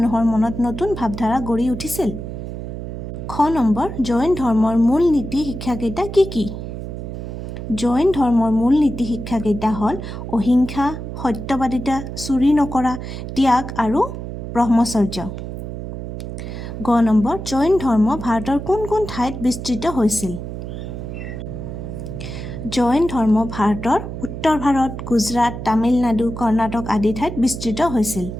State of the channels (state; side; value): noise; right; hum, 8 dB below the sound